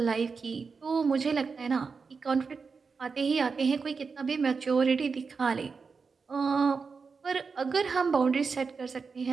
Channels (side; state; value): left; quieter; 5.0 dB